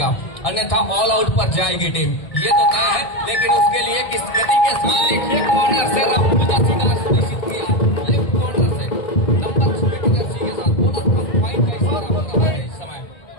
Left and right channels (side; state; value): right; late; 1.6 ms